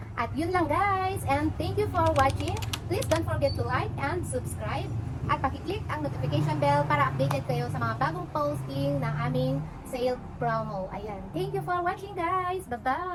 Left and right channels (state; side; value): identical; both; correlation 1.00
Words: At yun lang guys, and thank you for watching. Please don't forget to like and subscribe at pakiclick ang notification bell para updated kayo sa mga bagong posting ng aming sale promo. Ayan, thank you for watching guys. Bye